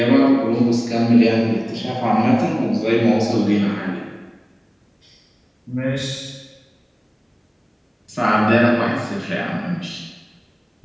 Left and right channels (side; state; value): both; identical; correlation 1.00